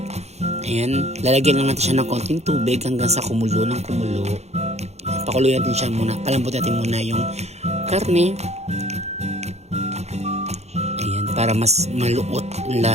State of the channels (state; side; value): late; left; 0.31 ms